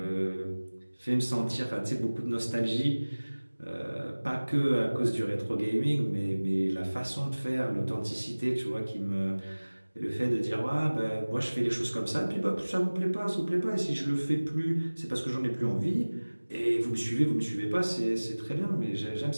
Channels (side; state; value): both; inverted; correlation -1.00